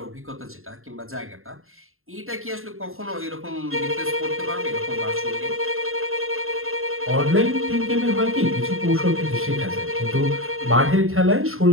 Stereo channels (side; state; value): left; late; 0.61 ms